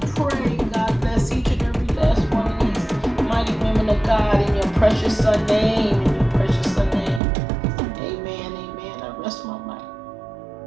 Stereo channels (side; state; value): left; drops out; at 7.2 s